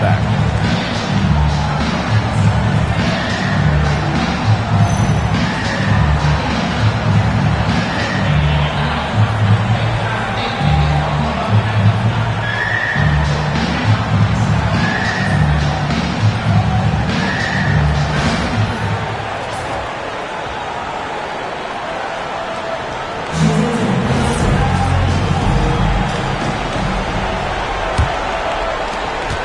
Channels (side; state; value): both; identical; correlation 1.00